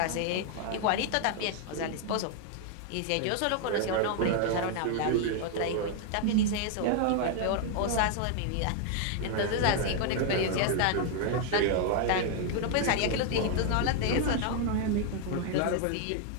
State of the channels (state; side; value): different; both; correlation 0.00